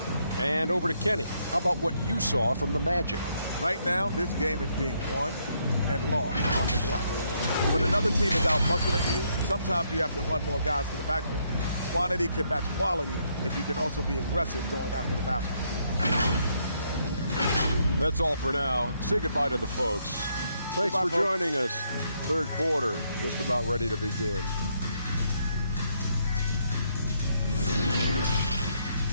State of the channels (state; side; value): inverted; both; correlation -0.73